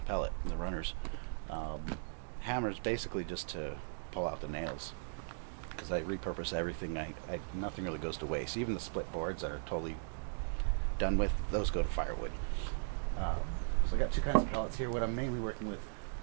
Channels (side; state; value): left; silent; digital silence